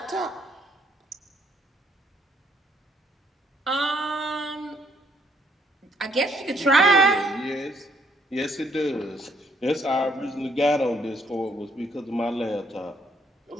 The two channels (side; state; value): both; normal; correlation 0.68